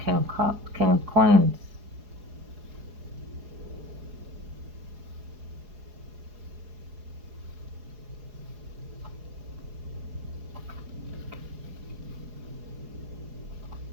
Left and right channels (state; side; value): late; left; 4.8 ms